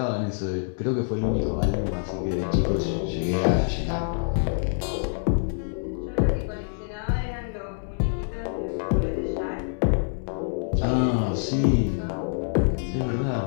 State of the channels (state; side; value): silent; right; 61 dB below the other